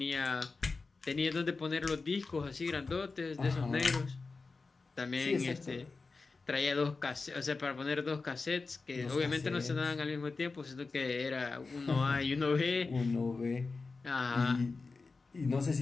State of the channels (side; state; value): right; quieter; 4.1 dB